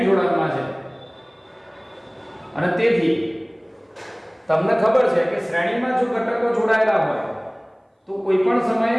જોડાણમાં છે. અને તેથી તમને ખબર છે કે શ્રેણીમાં જો ઘટકો જોડાયેલા હોય તો કોઈ પણ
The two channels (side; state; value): both; identical; correlation 1.00